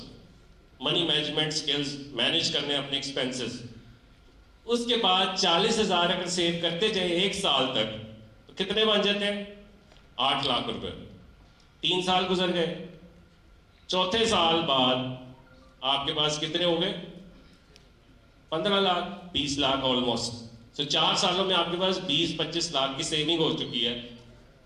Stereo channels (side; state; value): both; identical; correlation 1.00